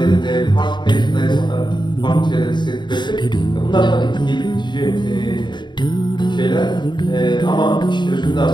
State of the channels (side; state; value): right; late; 0.22 ms